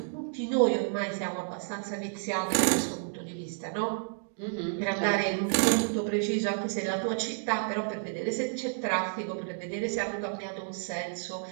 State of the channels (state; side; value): silent; left; 57 dB below the other